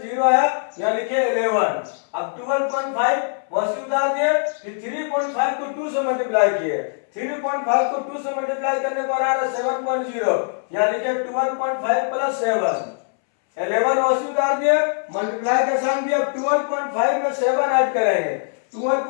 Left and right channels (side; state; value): right; silent; 64 dB below the other